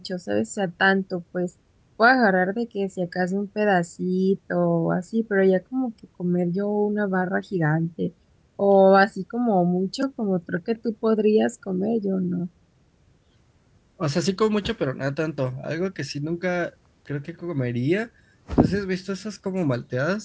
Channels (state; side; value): identical; both; correlation 1.00